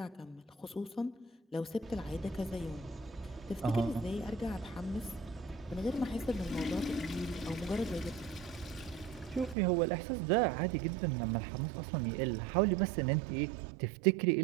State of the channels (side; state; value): left; drops out; at 9.6 s